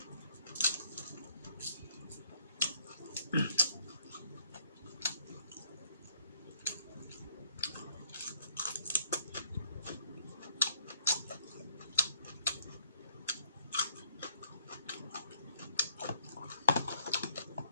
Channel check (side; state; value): both; inverted; correlation -0.67